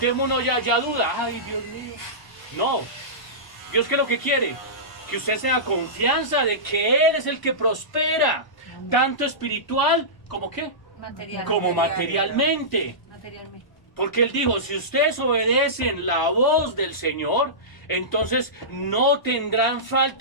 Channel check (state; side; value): late; right; 1.1 ms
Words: uno ya duda. Ay, Dios mío. No, Dios, ¿qué es lo que quiere? Que usted tenga confianza de que Él es el que prospera, tanto espiritual como ¿qué? Como materialmente. Porque Él dijo, si ustedes obedecen la voz del Señor, entonces no tendrán